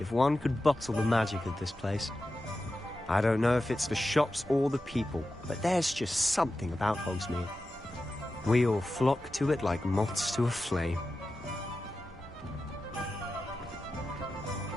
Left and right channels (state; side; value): normal; both; correlation 0.92